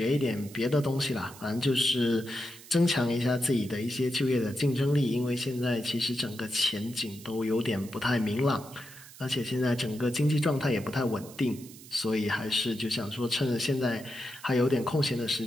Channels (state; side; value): noise; right; hiss, 18 dB below the sound